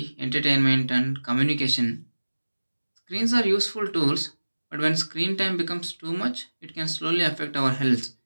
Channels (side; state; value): both; inverted; correlation -1.00